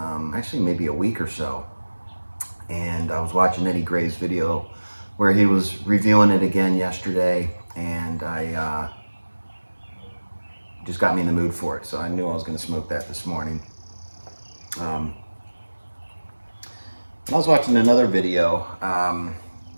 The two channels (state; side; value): inverted; both; correlation -1.00